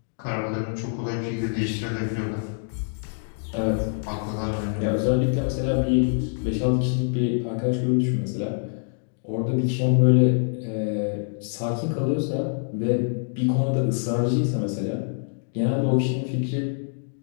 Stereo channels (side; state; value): right; silent; digital silence